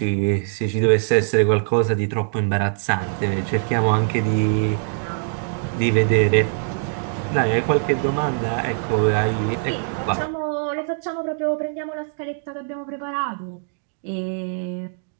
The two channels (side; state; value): left; silent; digital silence